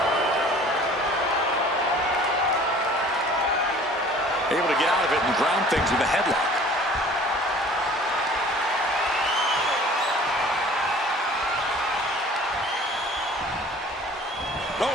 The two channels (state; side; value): normal; both; correlation 0.48